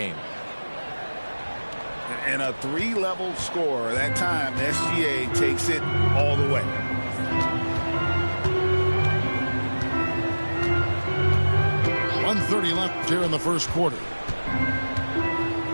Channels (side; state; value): both; inverted; correlation -1.00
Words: And a 3-level score. That time, SGA takes it all the way. .130 left here in the first quarter.